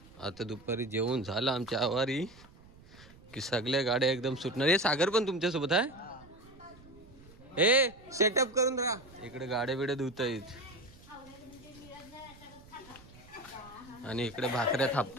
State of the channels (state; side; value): noise; right; rumble, 22 dB below the sound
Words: आता दुपारी जेवण झालं आमच्या आवारी की सगळ्या गाड्या एकदम सुटणार हे सागर पण तुमच्यासोबत आहे ए सेटअप करून राहा इकडे गाड्या बिड्या धुतायत आणि इकडे भाकऱ्या